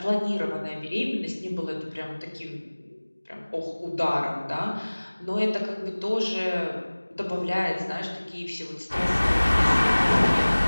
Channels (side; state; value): both; inverted; correlation -1.00